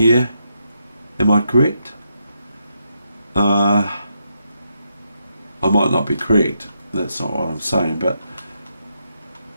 Am I correct? I might not be correct. That's not what I'm saying, but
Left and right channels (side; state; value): both; inverted; correlation -0.81